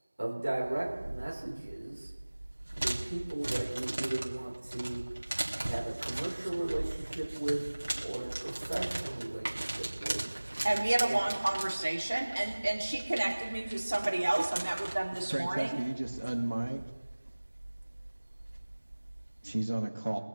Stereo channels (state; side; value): inverted; both; correlation -1.00